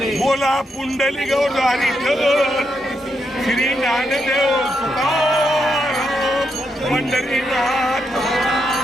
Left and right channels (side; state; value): both; normal; correlation 0.81